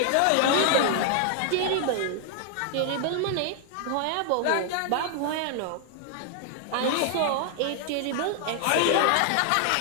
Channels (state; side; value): different; both; correlation 0.00